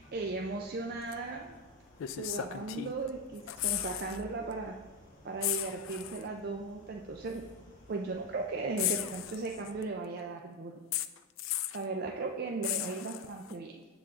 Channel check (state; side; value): normal; both; correlation 0.09